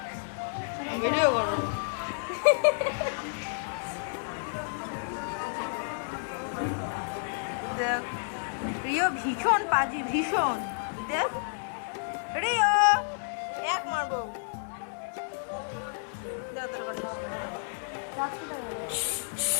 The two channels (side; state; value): right; silent; digital silence